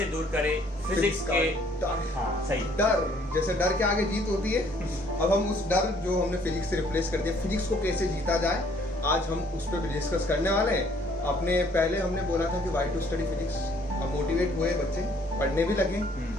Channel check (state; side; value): normal; both; correlation 0.62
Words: दूर करे फिजिक्स के डर। हाँ सही, डर जैसे डर के आगे जीत होती है। अब हम उस डर जो हमने फिजिक्स से रिप्लेस कर दिया, फिजिक्स को कैसे जीता जाए, आज हम उस पर भी डिस्कस करने वाले हैं। अपने पहले हमने बोला था कि वाई टू स्टडी फिजिक्स। अब मोटिवेट हुए बच्चे, पढ़ने भी लगे।